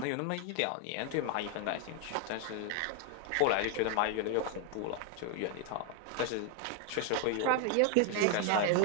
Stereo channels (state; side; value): different; both; correlation 0.00